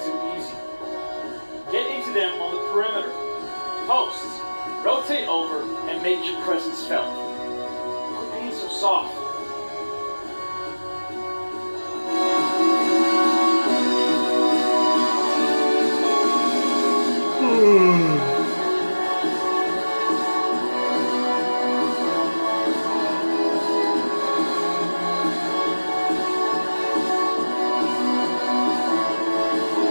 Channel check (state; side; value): inverted; both; correlation -1.00